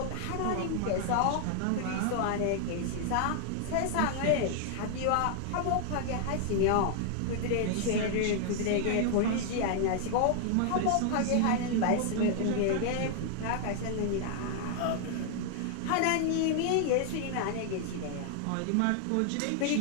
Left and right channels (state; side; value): different; both; correlation 0.00